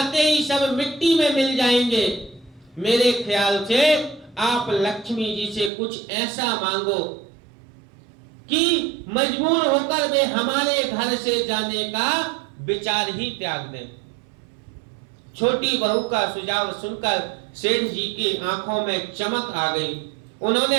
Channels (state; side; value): drops out; left; at 5.7 s